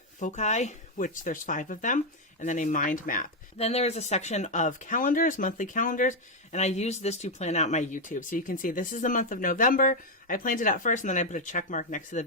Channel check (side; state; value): both; normal; correlation 0.02